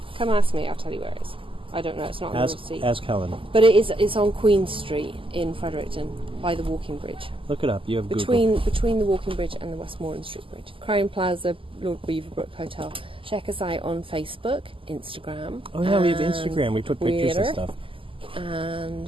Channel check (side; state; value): left; late; 0.25 ms